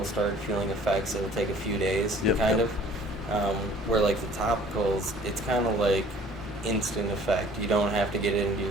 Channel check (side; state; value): both; normal; correlation 0.52